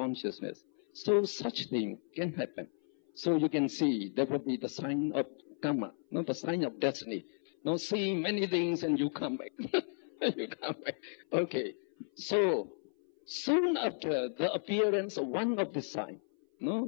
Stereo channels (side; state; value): right; silent; 55 dB below the other